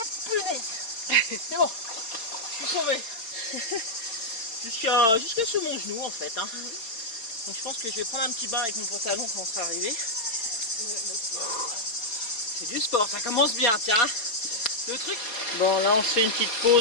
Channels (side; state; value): right; late; 4.3 ms